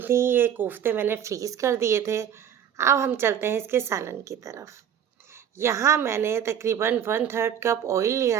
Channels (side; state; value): left; quieter; 9.1 dB